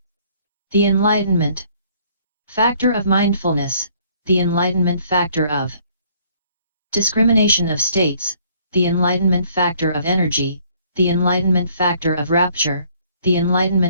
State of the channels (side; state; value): both; inverted; correlation -0.61